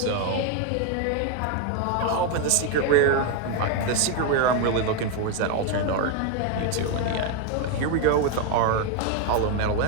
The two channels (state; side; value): different; both; correlation 0.01